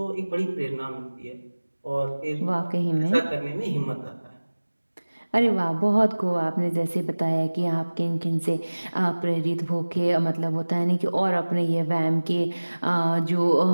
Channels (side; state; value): both; inverted; correlation -1.00